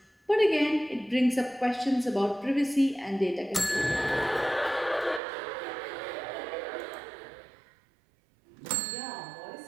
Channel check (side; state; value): left; drops out; at 5.2 s